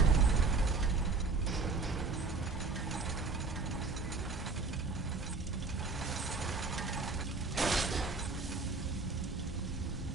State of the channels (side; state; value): left; quieter; 4.0 dB